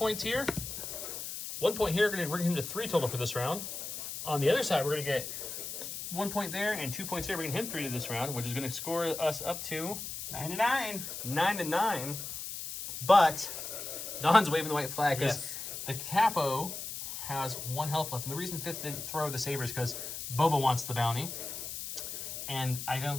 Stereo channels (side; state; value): left; noise; hiss, 7 dB below the sound